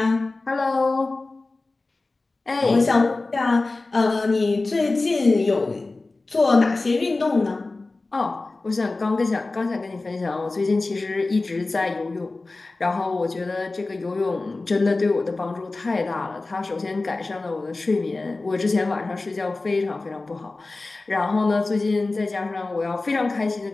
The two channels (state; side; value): quieter; right; 3.3 dB